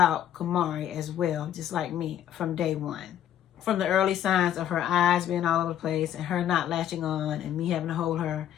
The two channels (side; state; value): right; quieter; 10.7 dB